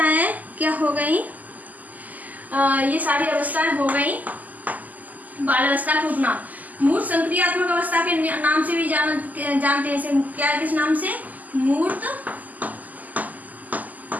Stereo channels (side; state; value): left; late; 0.080 ms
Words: क्या हो गई, ये सारी अवस्थाएं हो गई बाल अवस्था के उपनाम। मूर्त संक्रियात्मक अवस्था के नाम से भी जानते हैं। क्या है, किस नाम से? मूर्त